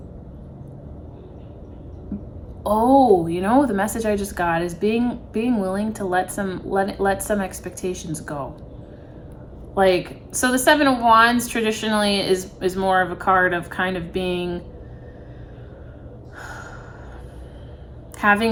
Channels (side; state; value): both; identical; correlation 1.00